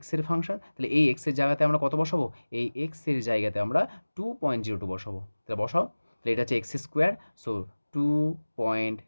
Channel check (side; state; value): both; inverted; correlation -1.00